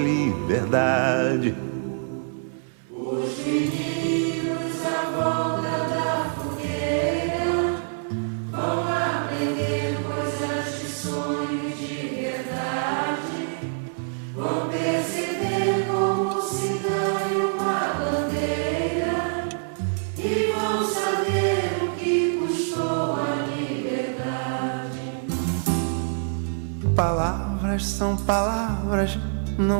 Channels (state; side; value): silent; left; digital silence